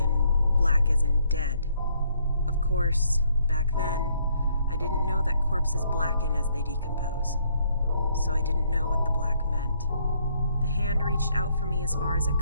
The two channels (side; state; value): both; inverted; correlation -0.69